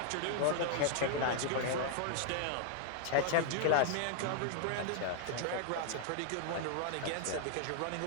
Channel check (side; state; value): both; different; correlation 0.00